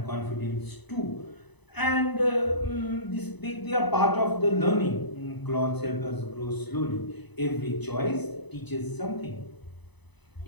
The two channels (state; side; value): late; right; 1.0 ms